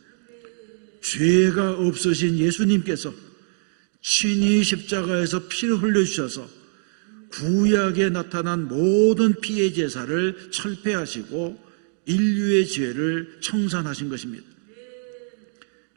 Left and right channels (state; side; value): silent; left; digital silence